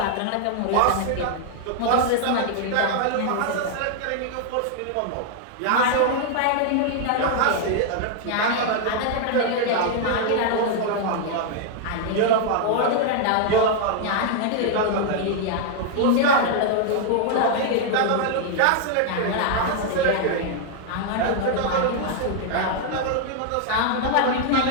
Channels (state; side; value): different; both; correlation 0.00